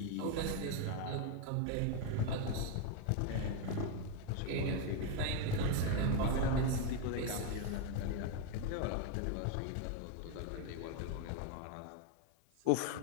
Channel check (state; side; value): different; both; correlation 0.02